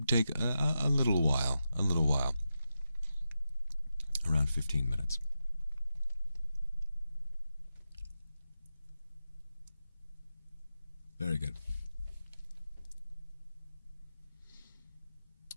take a little while, around 15 minutes. Very good.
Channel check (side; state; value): both; inverted; correlation -0.89